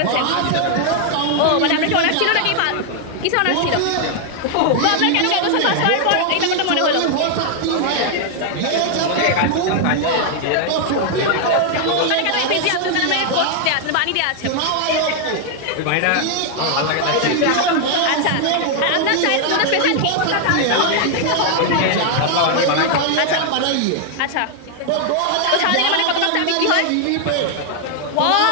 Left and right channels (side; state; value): both; different; correlation 0.00